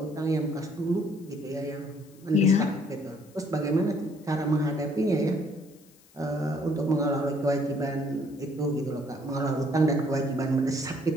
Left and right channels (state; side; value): noise; left; hiss, 28 dB below the sound